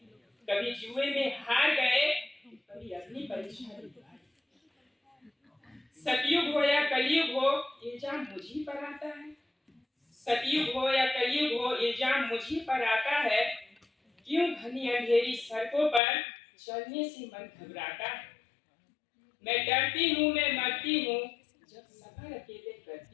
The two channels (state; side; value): drops out; right; at 16.0 s